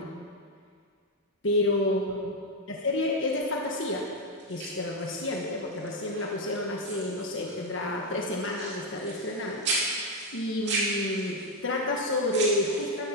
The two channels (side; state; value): both; normal; correlation 0.04